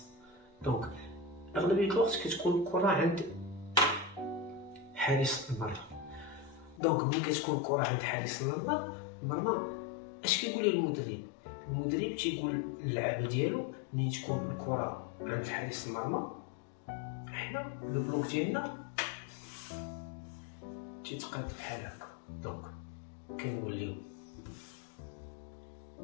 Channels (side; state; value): right; drops out; at 6.8 s